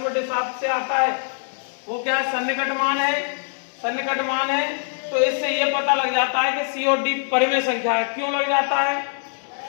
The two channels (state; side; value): silent; right; 63 dB below the other